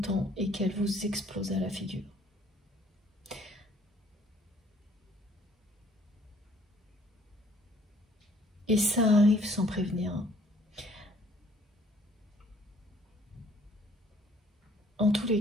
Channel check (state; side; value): normal; both; correlation 0.59